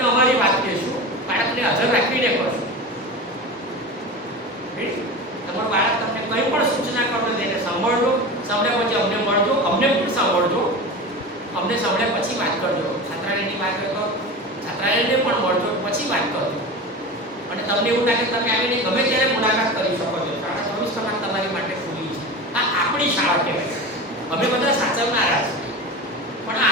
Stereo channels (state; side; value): normal; both; correlation 0.28